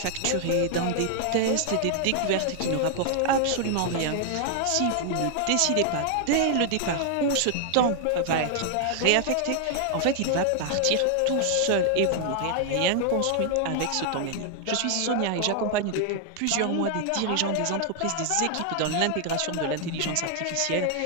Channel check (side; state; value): both; different; correlation 0.00